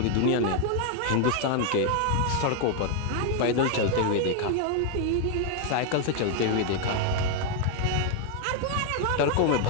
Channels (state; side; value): different; both; correlation 0.00